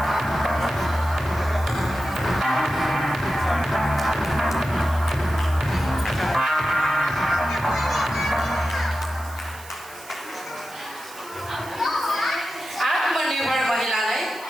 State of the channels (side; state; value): right; noise; hiss, 19 dB below the sound